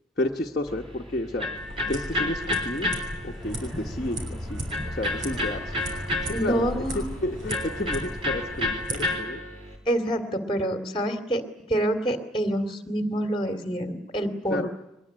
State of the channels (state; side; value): normal; both; correlation 0.53